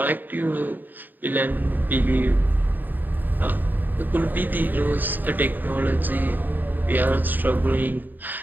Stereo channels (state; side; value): late; left; 0.089 ms